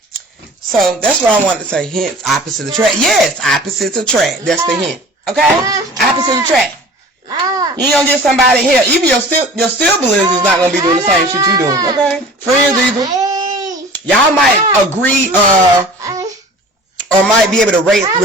So that's what I wanted to say. Hint, opposite attract. Yes, opposites attract. That's the hint. Okay? Opposite attract. You ain't gonna get somebody here. Even your siblings is not gonna be doing the same shit you doing. Okay? Friends either. Y'all might agree or might be able to relate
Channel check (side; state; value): both; normal; correlation 0.43